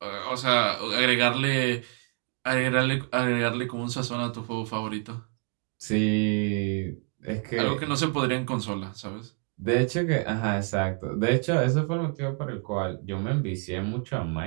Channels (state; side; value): quieter; left; 36.7 dB